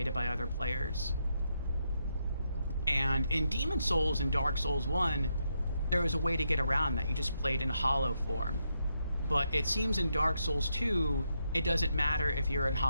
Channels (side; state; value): both; inverted; correlation -0.81